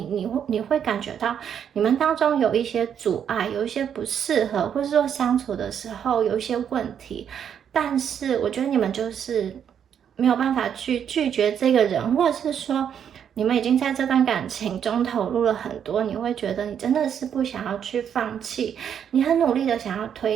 会感觉到你们当中有一些阻碍，有一些不适合，或者说相处的时候有一些问题。但是我觉得你们就是没有办法去拒绝这个人，或者是说你们已经在这段感情中投入了很多，你会觉得你真的是不想要去放弃，你很努力的想要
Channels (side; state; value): left; quieter; 8.5 dB